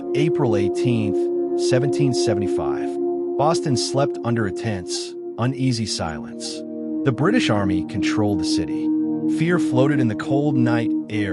April 18th, 1775. Boston slept under a tense, uneasy silence. The British Army controlled the city. Fear floated in the cold night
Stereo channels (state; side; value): identical; both; correlation 1.00